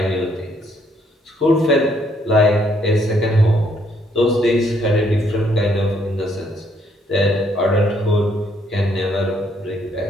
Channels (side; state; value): both; normal; correlation 0.70